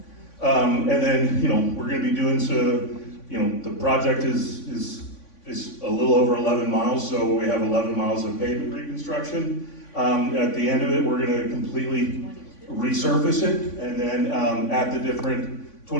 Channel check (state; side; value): late; right; 3.5 ms